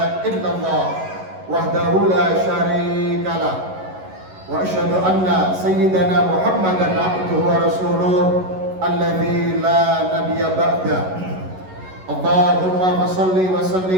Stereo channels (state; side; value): late; left; 11 ms